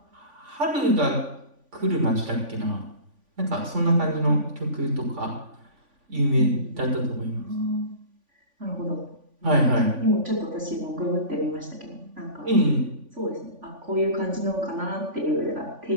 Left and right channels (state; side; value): late; left; 3.5 ms